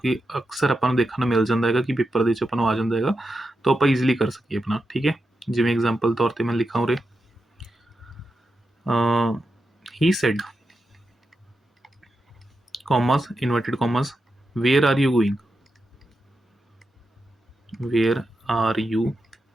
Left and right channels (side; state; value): both; normal; correlation 0.88